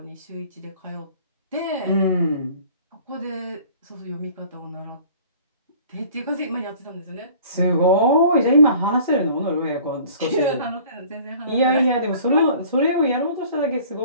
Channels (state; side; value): inverted; both; correlation -0.49